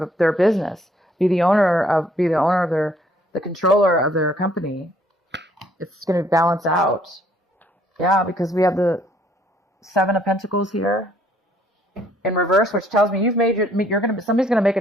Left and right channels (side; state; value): both; normal; correlation 0.63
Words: their business, be the owner of the controller of their company. It's going to balance out. Yeah, because we have the Seven of Pentacles here in reverse, which tells me your